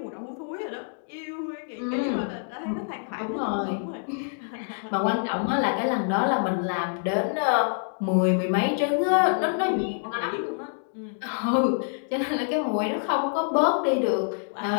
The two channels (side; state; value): right; silent; digital silence